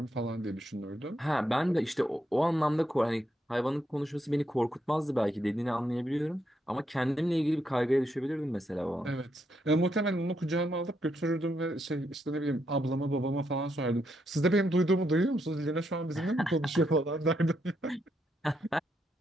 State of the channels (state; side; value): normal; both; correlation 0.79